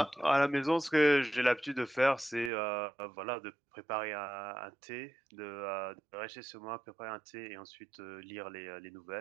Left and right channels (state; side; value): drops out; left; at 2.5 s